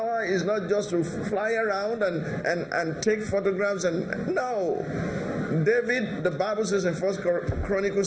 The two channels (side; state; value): both; identical; correlation 1.00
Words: is not just to fly around and take photographs no. David, the Bible says in 1 Chronicles